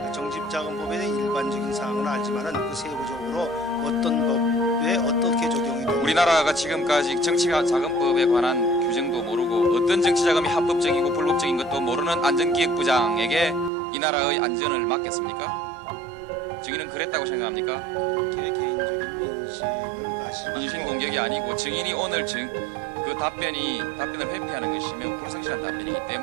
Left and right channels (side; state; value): left; drops out; at 13.7 s